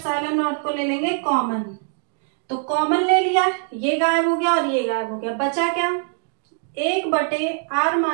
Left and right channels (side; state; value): left; silent; 64 dB below the other